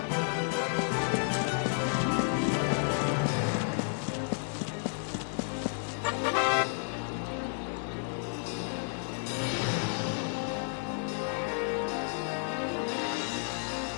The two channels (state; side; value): silent; right; 57 dB below the other